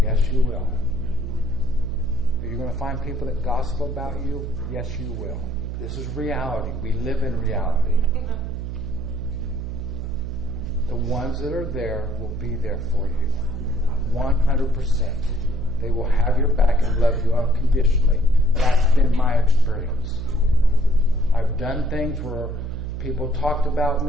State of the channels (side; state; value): right; noise; hum, 6 dB below the sound